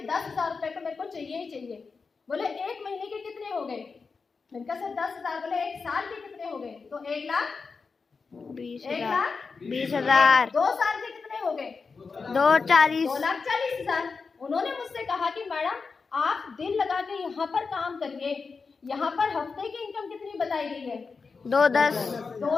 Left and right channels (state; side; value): quieter; right; 4.8 dB